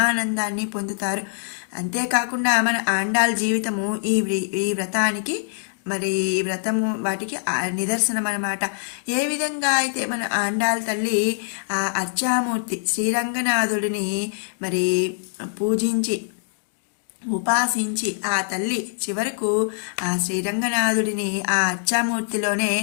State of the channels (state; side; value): silent; right; digital silence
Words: పొందుతారు. అంతేకాకుండా మన ఆండాల్ జీవితము ఈ వ్రతానికి మరి వ్రతము వాటికి నిదర్శనం అన్నమాట. ఏ విధంగా అయితే మన ఆండాల్ తల్లి ఆ అర్చామూర్తి శ్రీరంగనాథుడిని మరి పూజించి ఉపాసించి ఆ తల్లి చివరకు ఆ శ్రీరంగనాథుడిని ఆ అర్చామూర్తిలోనే